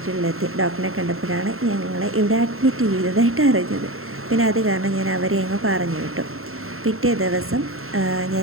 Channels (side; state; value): left; late; 0.62 ms